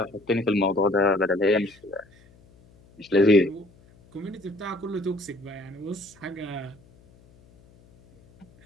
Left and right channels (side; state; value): left; noise; hum, 28 dB below the sound